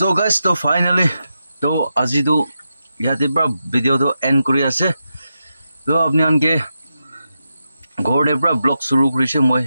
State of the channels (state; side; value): inverted; both; correlation -0.88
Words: guys, to finally to আজি to ইয়াতে পৰা video to end কৰি আছে তো আপনি আনকে ঘৰতে পৰা blog শুৰু কৰিছে মই